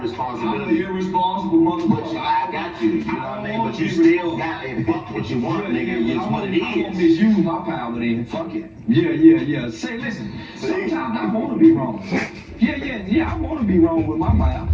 responsibility. I'm an irresponsible motherfucker. I got you, you know what I mean? But you still got a fuck what you want, nigga. It's what it is. I won't misuse my power then. Fuck it. Yeah. Say, listen, sometimes I want to be wrong. Yeah, I want to be wrong with my mouth.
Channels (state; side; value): identical; both; correlation 1.00